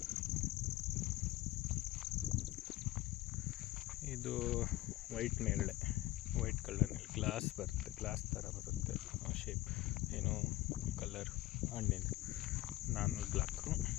ಇದು ವೈಟ್ ನೇರಳೆ, ವೈಟ್ ಕಲರ್ನಲ್ಲಿ ಗ್ಲಾಸ್ ಬರುತ್ತೆ, ಗ್ಲಾಸ್ ಥರ ಬರುತ್ತೆ ಶೇಪ್, ಏನೋ ಕಲರ್ ಹಣ್ಣಿಂದ. ನಾನು ಬ್ಲ್ಯಾಕು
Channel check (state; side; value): quieter; right; 16.7 dB